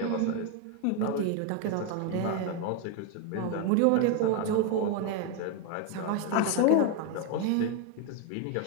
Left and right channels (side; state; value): both; different; correlation 0.01